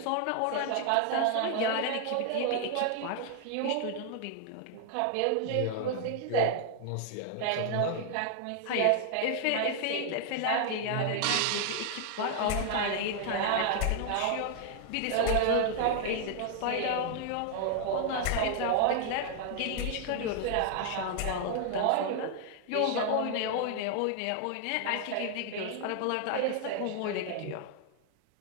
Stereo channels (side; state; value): both; different; correlation 0.00